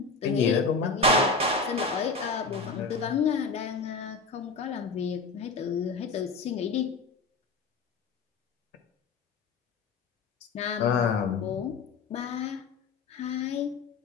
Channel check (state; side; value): quieter; right; 4.2 dB